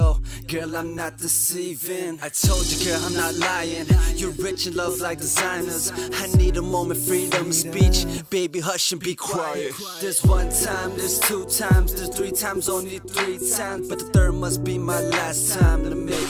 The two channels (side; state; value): both; identical; correlation 1.00